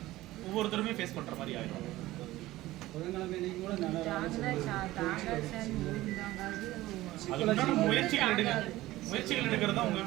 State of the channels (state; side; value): quieter; left; 17.0 dB